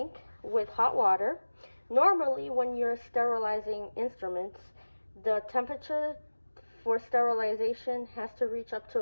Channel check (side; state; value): both; inverted; correlation -1.00